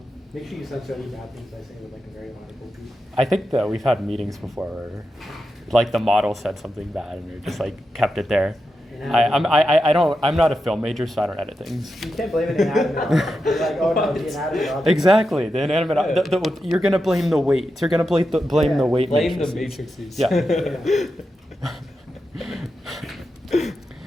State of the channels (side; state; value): both; normal; correlation 0.88